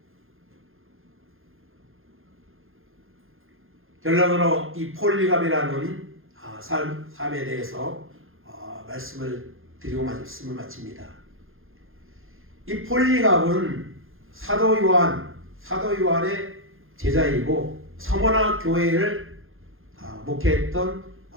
결론으로 이 폴리갑이라는 삶에 대해서 말씀을 드리고 말씀을 마칩니다. 이 폴리갑은 사도 요한의 제자이고 서머나 교회를 목회했던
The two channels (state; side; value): late; left; 0.60 ms